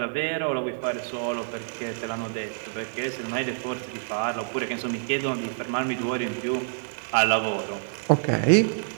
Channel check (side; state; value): left; silent; digital silence